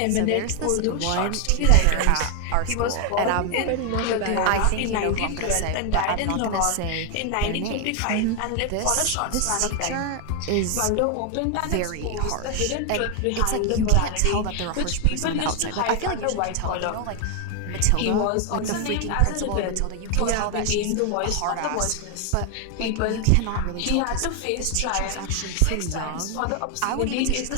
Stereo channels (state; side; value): different; both; correlation 0.00